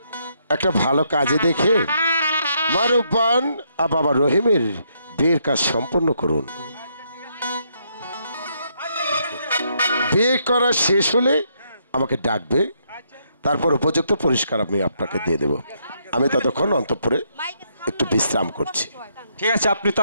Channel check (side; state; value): both; inverted; correlation -0.75